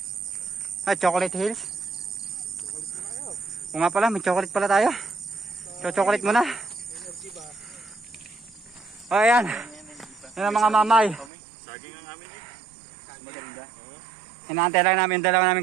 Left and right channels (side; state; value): left; drops out; at 11.3 s